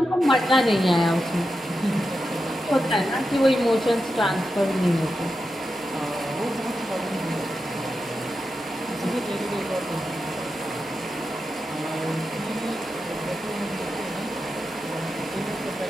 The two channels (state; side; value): normal; both; correlation 0.89